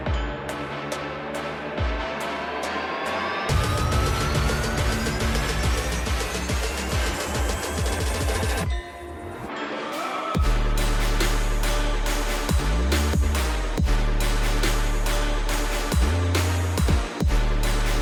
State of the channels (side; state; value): both; identical; correlation 1.00